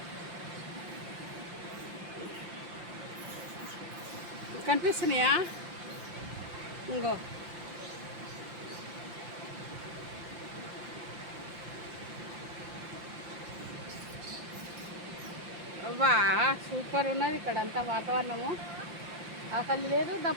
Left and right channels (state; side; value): late; left; 5.8 ms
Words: కనిపిస్తున్నాయా? ఇంకో అవ్వా సూపర్ ఉన్నది ఇక్కడ అంతా వాతావరణము. ఆకలి లేదు,